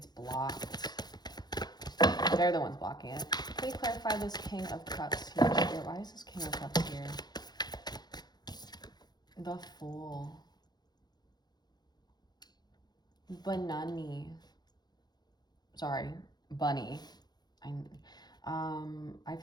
blocked. They're the ones blocking it. Can we clarify this King of Cups here? Why is this King of Cups here? The Fool. Banani. Sorry, Bunny. I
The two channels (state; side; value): late; right; 0.20 ms